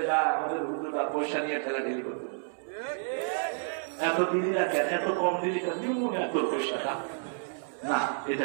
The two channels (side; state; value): left; silent; digital silence